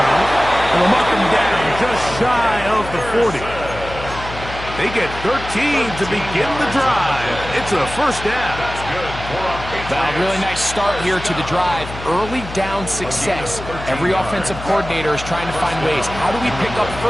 And they'll mark him down just shy of the 40. They get 13 to begin the drive. It's a first down. Well, really nice start here to the drive. Early down success. Every offensive coordinator is trying to find ways. How do we pick up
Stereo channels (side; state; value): left; noise; hum, 11 dB below the sound